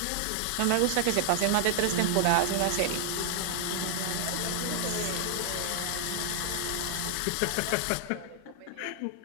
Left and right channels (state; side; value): different; both; correlation 0.00